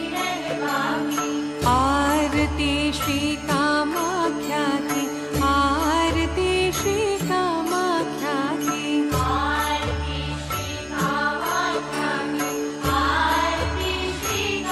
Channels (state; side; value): identical; both; correlation 1.00